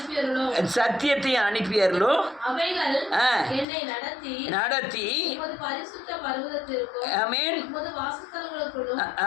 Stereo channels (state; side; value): drops out; right; at 3.7 s